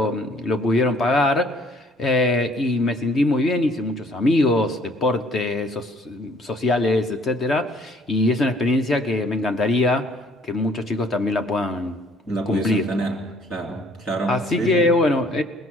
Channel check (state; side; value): normal; both; correlation 0.59